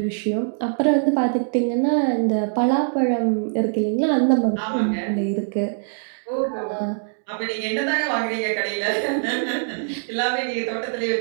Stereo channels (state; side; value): silent; left; digital silence